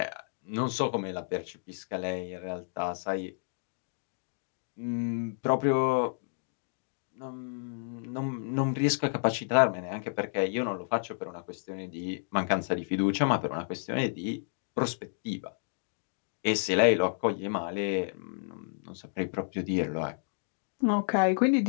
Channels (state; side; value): silent; right; digital silence